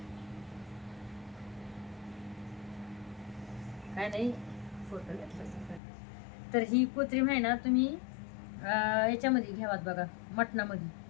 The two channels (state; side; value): drops out; right; at 5.8 s